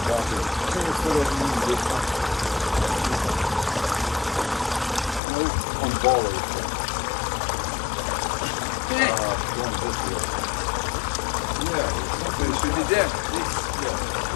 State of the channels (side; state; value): right; drops out; at 5.2 s